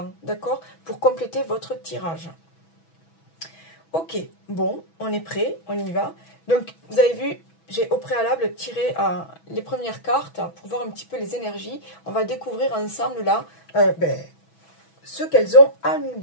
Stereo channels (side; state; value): right; late; 6.1 ms